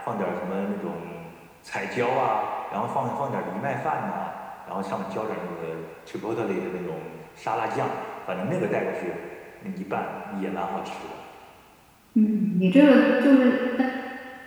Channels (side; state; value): both; identical; correlation 1.00